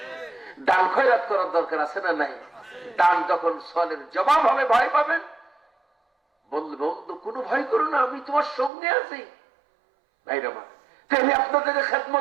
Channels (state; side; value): drops out; left; at 8.7 s